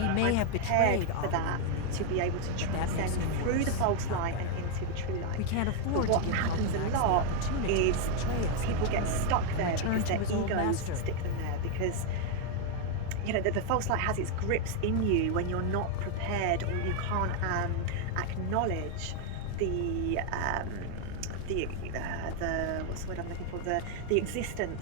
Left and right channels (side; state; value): both; different; correlation 0.01